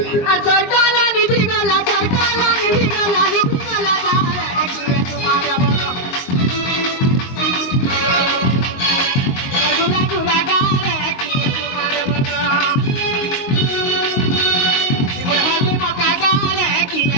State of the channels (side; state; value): right; late; 22 ms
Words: আর সরকার নিদ্রি গলা জালে কি চুমা দেব গো গুলা গুলা গালে কি চুমা দেব গো এবার হাতে মকা গালে কি